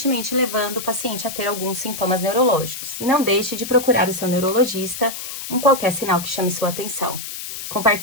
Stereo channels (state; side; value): noise; left; hiss, 8 dB below the sound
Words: levando o paciente a ter alguns sintomas neurológicos. E não deixe de procurar o seu neurologista em qualquer sinal que chame sua atenção.